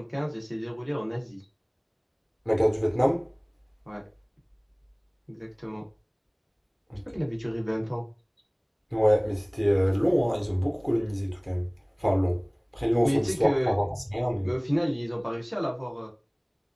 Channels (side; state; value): both; identical; correlation 1.00